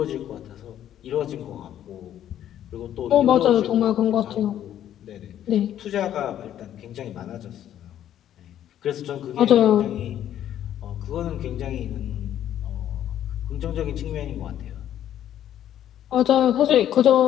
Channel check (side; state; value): right; quieter; 11.1 dB